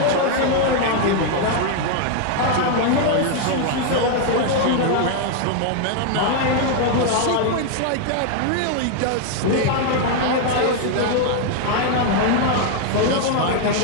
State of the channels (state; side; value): different; both; correlation 0.00